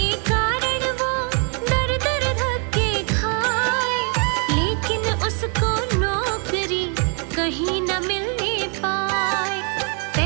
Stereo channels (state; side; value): quieter; left; 38.3 dB